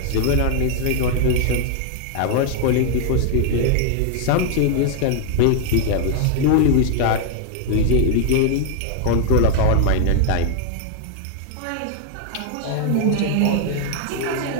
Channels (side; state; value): both; different; correlation 0.00